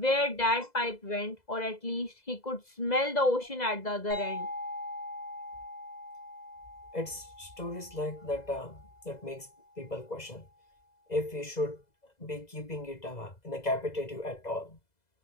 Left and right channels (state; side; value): late; right; 2.0 ms